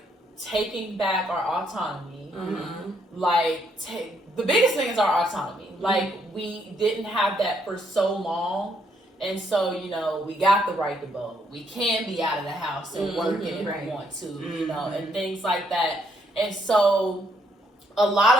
taking back our autonomy. Like the biggest thing is our autonomy. Like we didn't have that for so long. And so, you know, we got the right to vote. We can be out of the house and working if we want to, you know, and things like that. And so a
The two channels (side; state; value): both; normal; correlation 0.72